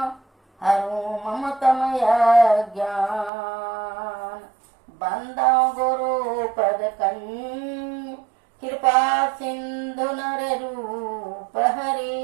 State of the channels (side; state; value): left; drops out; at 3.3 s